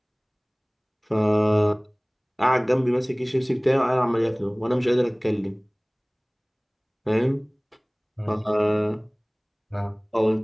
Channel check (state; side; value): identical; both; correlation 1.00